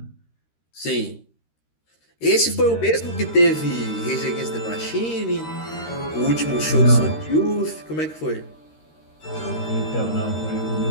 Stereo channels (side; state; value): right; late; 13 ms